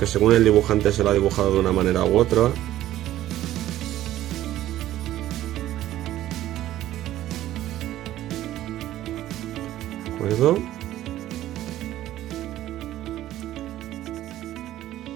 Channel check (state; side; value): quieter; left; 13.7 dB